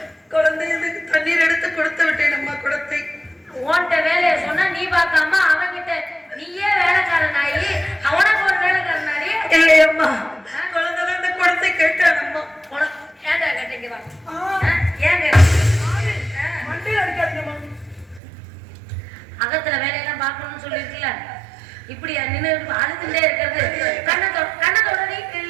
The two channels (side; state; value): left; drops out; at 18.2 s